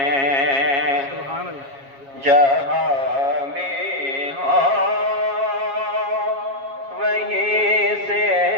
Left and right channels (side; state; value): left; late; 7.3 ms